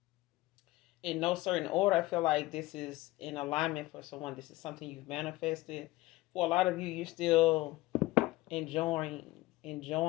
In no certain order, I feel like this is in alignment for someone. This is something you've manifested. For a lot of you, you're still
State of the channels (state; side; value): quieter; right; 19.3 dB